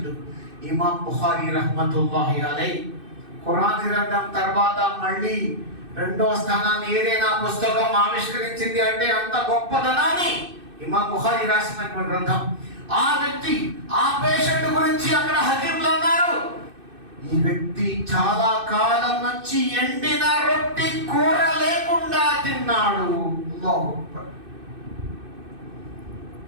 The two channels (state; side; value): late; left; 2.6 ms